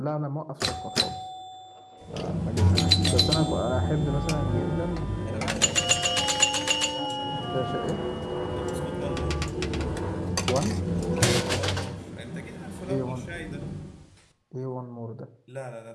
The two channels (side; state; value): both; identical; correlation 1.00